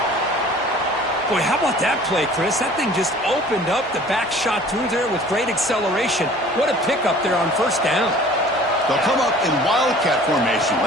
Boy, how about that play, Chris? That thing just opened up. The back shot through there with great acceleration. What a pickup there on first down. They'll come up in Wildcat formation.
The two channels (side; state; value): both; normal; correlation 0.48